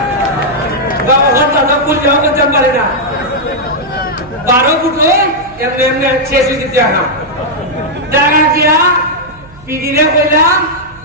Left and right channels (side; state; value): right; noise; hum, 23 dB below the sound